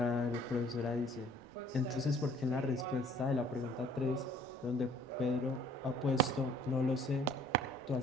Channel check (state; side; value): noise; right; rumble, 26 dB below the sound